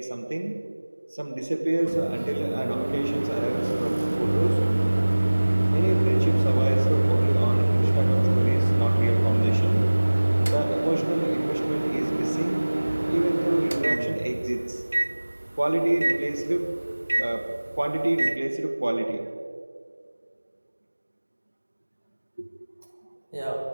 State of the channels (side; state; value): both; inverted; correlation -1.00